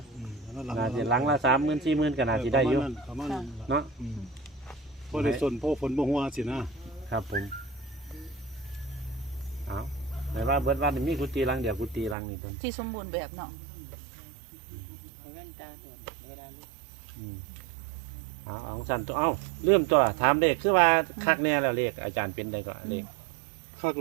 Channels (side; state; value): left; drops out; at 12.2 s